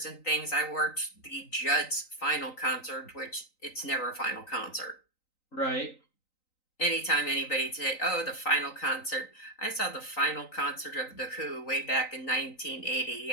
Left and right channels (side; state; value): right; late; 3.9 ms